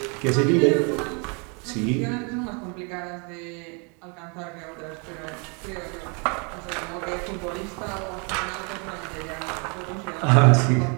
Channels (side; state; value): left; quieter; 34.3 dB